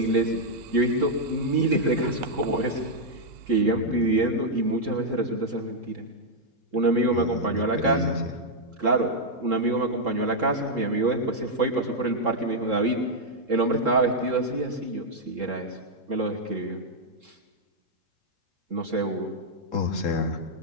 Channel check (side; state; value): left; late; 3.7 ms